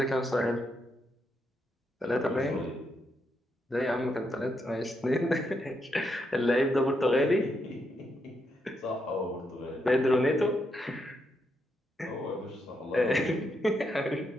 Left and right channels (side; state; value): both; normal; correlation 0.80